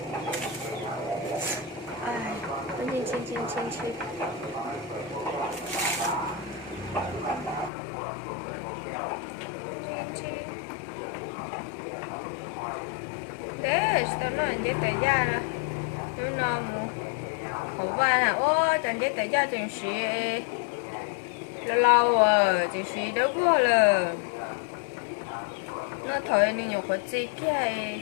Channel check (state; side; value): drops out; right; at 7.7 s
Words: Xin. Đấy, tao nói để tới ra nè. Nó mu hổ vai nè, ô, chẳng để tới ra chẳng xí lâu rồi, chẳng xí đâu có là nó thôi nên nhiều khó chi kia